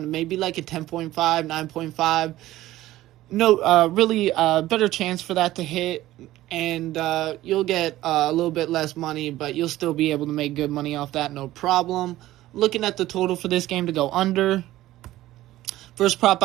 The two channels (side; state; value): left; quieter; 15.5 dB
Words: to maybe like a 10.5, 9.5. No, really better chance for that to hit, and you'll get a little bit less money, but you'll still be able to make good money off that, no problem. Looking at the total for this game to go under. First prop